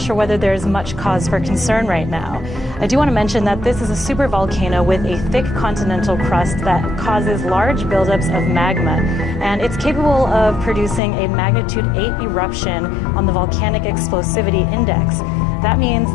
whether there's much cause for concern right now. I do want to mention that this is a supervolcano with a thick continental crust that causes large buildups of magma, and it's capable of producing a magnitude 8 eruption on the volcanic explosivity index. That means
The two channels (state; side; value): drops out; right; at 11.0 s